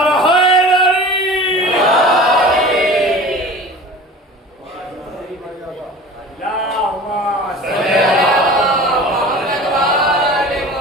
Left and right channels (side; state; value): both; normal; correlation 0.39